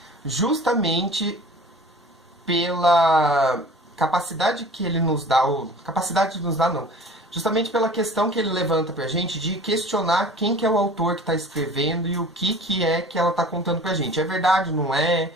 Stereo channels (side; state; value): both; normal; correlation 0.44